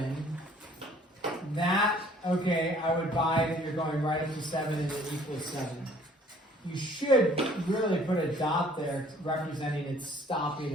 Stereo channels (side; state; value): both; normal; correlation 0.57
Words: that, okay, I would buy that you're going right up to 7 and it equals 7. You should really put a dot there representing it's stopping